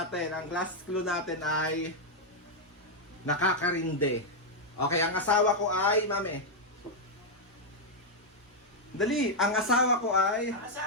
Ang last clue natin ay nakakarinde. Okay, ang asawa ko ay, Mami. Dali, ang asawa ko ay... Ang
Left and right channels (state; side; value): normal; both; correlation -0.02